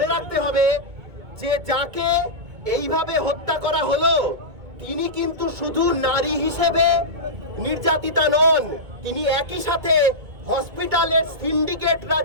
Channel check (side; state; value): left; late; 2.2 ms